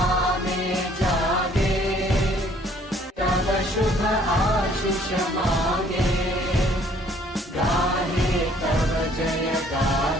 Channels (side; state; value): both; normal; correlation 0.60